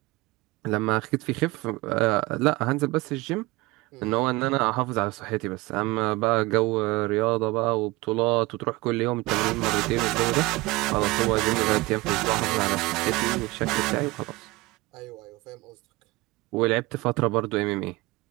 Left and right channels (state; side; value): quieter; left; 21.8 dB